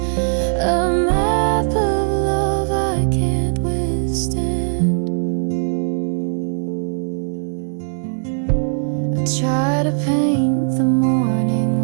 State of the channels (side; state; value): left; silent; digital silence